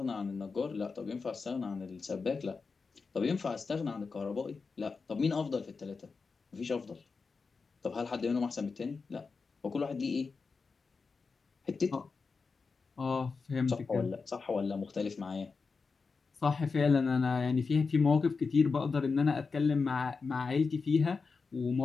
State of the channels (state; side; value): quieter; right; 4.7 dB